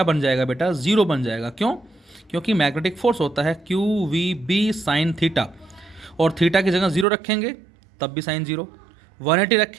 बन जाएगा बेटा, जीरो बन जाएगा। क्यों? क्योंकि मैग्नेटिक फोर्स होता है Q we B sine theta, और थीटा की जगह जीरो रखेंगे तब भी साइन जीरो, 180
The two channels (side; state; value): left; drops out; at 7.1 s